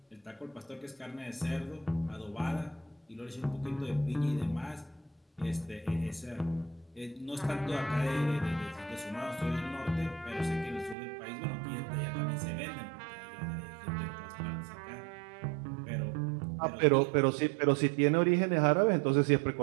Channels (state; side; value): drops out; left; at 11.0 s